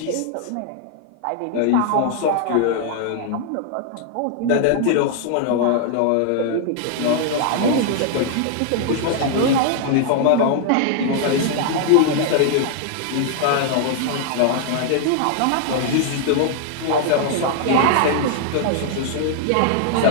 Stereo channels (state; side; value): different; both; correlation 0.00